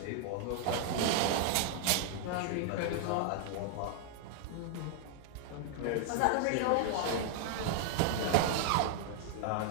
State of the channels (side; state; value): both; different; correlation -0.01